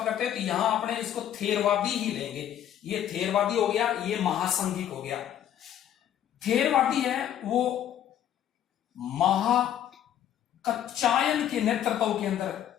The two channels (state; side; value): quieter; right; 10.7 dB